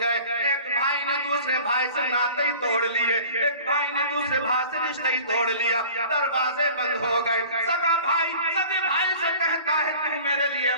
گئے۔ ایک بھائی نے دوسرے بھائی سے ناطے ہی توڑ لیے، ایک بھائی نے دوسرے بھائی سے رشتہ ہی توڑ لیا، دروازے بند ہو گئے۔ سگا بھائی سگے بھائی سے کہتا ہے تو میرے لیے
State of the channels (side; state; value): both; inverted; correlation -0.45